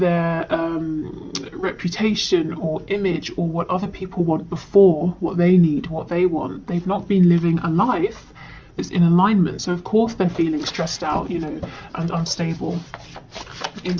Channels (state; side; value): identical; both; correlation 1.00